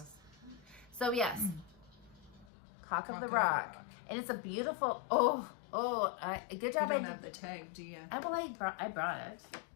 So yes, Cock of the Rock, and it's a beautiful. Good You job. don't have the tag, do you? I brought it.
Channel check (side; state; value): right; drops out; at 2.5 s